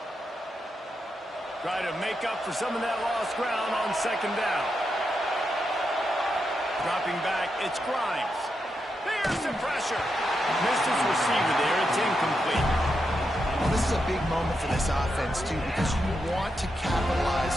Try to make up for some of that lost ground on second down. Dropping back, it's Grimes. There's the pressure. Missed his receiver there. It's incomplete. Well, this is a big moment for this offense, too, because you want to capitalize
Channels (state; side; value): normal; both; correlation 0.85